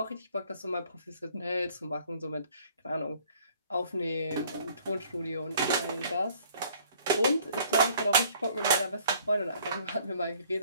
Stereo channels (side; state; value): both; inverted; correlation -0.58